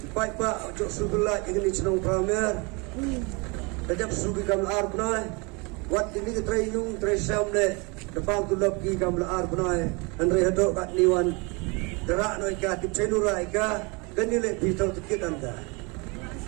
baik pak jok sebelah ini cenong pramer. Sejak sugi kami arbna, wat ini ketrayung tresam le. Depan tu loki kami arbna, andre hadok kat niwan. Derak noi ka tip cedura ika. Kanile pitau tikit anda.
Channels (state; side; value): quieter; left; 29.3 dB